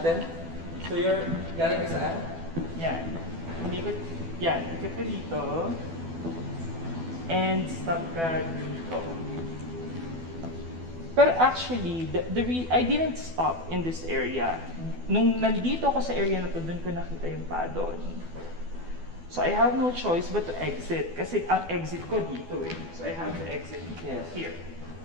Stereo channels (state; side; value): late; left; 12 ms